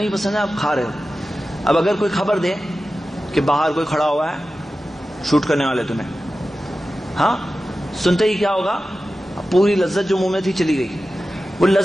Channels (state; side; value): normal; both; correlation 0.94